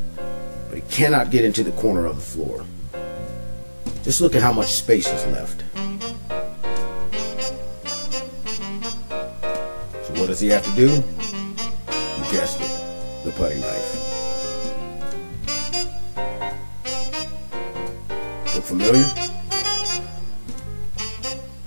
he cannot get into the corner of the floor. Just look at how much space is left. So what does he have to do? You guessed it, the putty knife. Look familiar?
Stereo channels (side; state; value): both; inverted; correlation -1.00